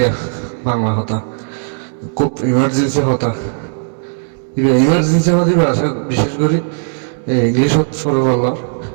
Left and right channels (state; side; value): silent; left; 69 dB below the other